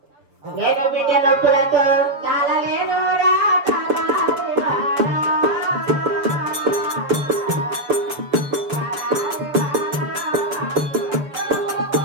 నేను బిడ్డ నొప్పులతో తాళలేను రా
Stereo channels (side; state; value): left; late; 7.3 ms